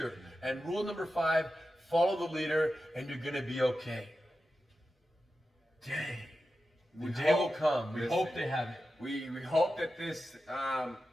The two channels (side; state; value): both; normal; correlation 0.91